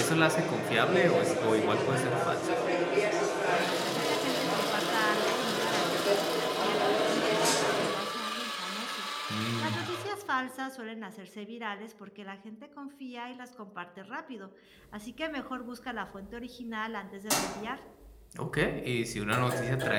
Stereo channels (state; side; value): identical; both; correlation 1.00